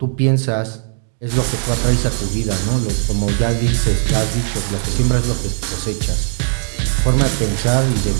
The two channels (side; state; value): left; silent; 59 dB below the other